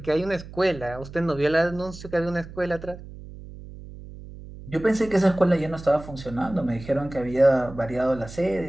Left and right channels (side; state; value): right; noise; hum, 15 dB below the sound